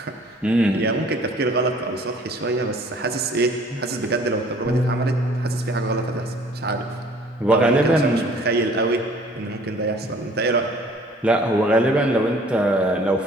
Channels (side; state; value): both; normal; correlation 0.54